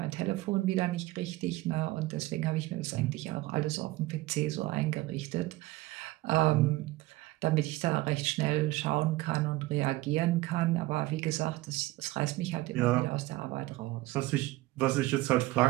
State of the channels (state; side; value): quieter; left; 18.8 dB